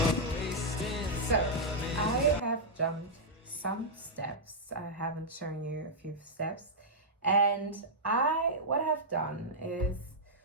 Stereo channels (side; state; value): both; normal; correlation -0.08